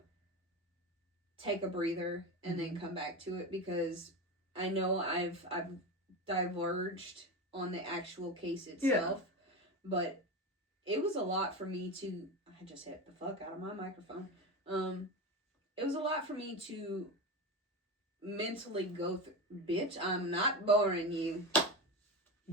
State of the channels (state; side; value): normal; both; correlation 0.21